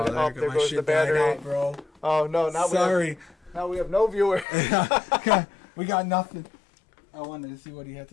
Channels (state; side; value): drops out; right; at 4.5 s